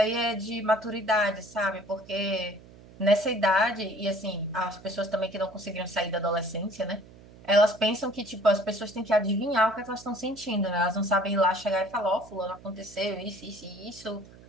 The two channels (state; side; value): noise; right; hum, 21 dB below the sound